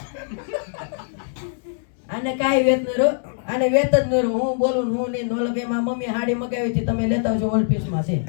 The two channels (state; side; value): silent; right; 64 dB below the other